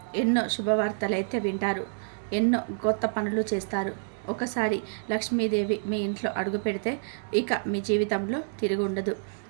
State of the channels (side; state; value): left; silent; digital silence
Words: ఎన్నో శుభవార్తలు అయితే వింటారు. ఎన్నో కొత్త పనులు చేస్తారు. ఒకసారి లక్ష్మీదేవి మీ ఇంట్లో అడుగు పెడితే ఇక మీ జీవితంలో తిరిగి ఉండదు.